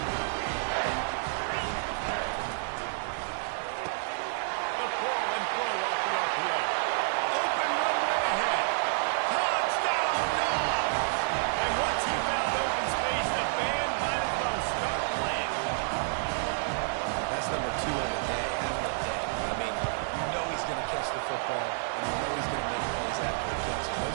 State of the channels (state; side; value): silent; left; 58 dB below the other